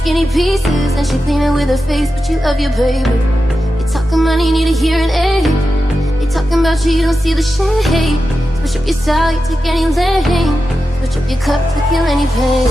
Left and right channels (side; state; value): both; normal; correlation 0.91